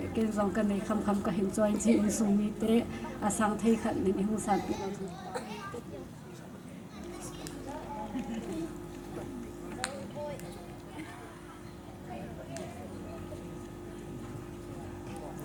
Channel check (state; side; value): identical; both; correlation 1.00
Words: dòng cái này khăm cái hình cho anh chị in sung mi tế sang thấy khẩn nên không sản